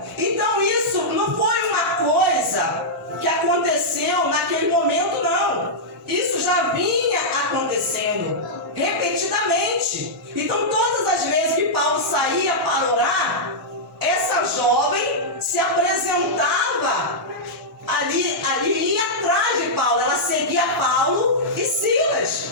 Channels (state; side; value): normal; both; correlation -0.09